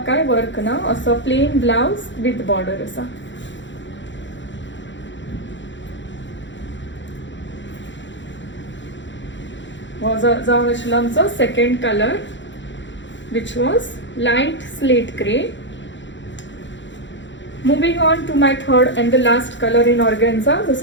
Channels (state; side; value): late; right; 0.54 ms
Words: काय वर्क ना, असो प्लेन ब्लाउज विथ बॉर्डर आसा. हो जावन आशिल्लो आमचो second colour which was light slate grey. Moving on to my third and the last colour in organza जो